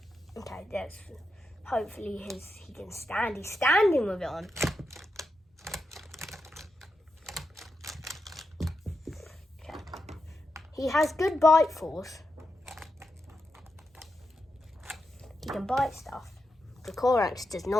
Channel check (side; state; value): both; normal; correlation 0.87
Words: Okay, that's hopefully he can stand. He's standing with it on. Okay. He has good bite force. He can bite stuff. The Dracorex does